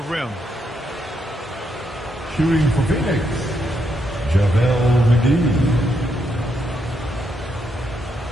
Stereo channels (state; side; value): normal; both; correlation 0.79